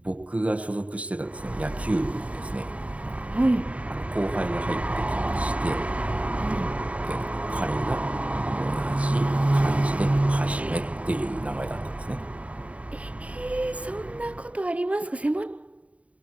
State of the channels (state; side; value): late; left; 0.066 ms